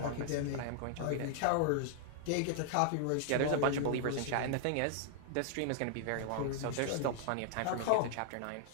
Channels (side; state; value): both; different; correlation 0.00